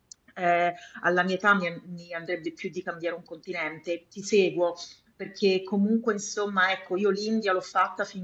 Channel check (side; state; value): both; identical; correlation 1.00